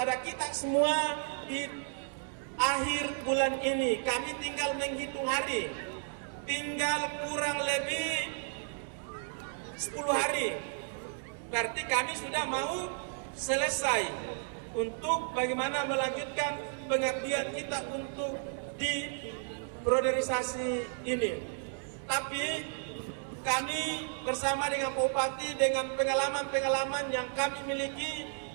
kita semua di akhir bulan ini. Kami tinggal menghitung hari, tinggal kurang lebih 10 hari. Berarti kami sudah mau selesai untuk bagaimana melanjutkan pengabdian kita untuk di priorisasi ini. Tapi kami bersama dengan Pak Bupati dengan pengalaman-pengalaman yang kami miliki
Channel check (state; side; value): silent; left; 56 dB below the other